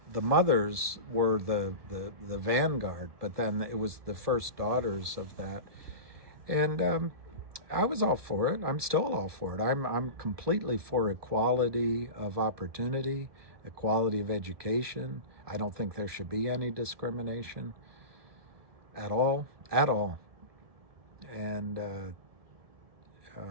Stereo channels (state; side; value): late; left; 1.3 ms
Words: mothers were the vanguard, but then it was the first daughters of that, and I was all for it. I'm still all for it. I'm completely for equality of opportunity, equality of education. I don't think there should be any discrimination at all, and